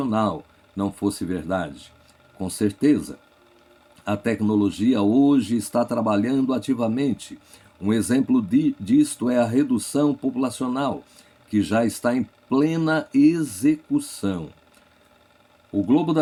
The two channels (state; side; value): identical; both; correlation 1.00